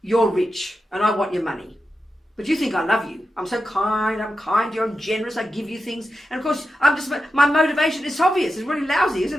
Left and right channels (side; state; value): both; normal; correlation 0.90